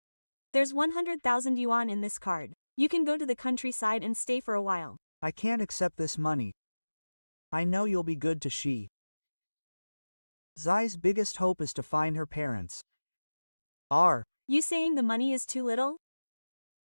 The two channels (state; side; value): inverted; both; correlation -1.00